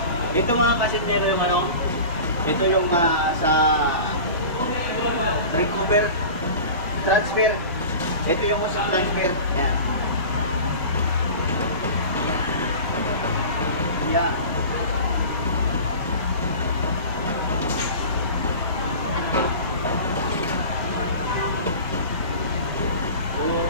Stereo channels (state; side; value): inverted; both; correlation -0.36